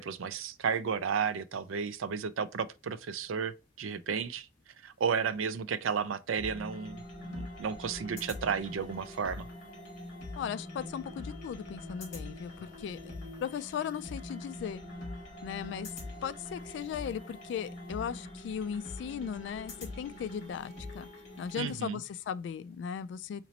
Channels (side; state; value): both; normal; correlation -0.07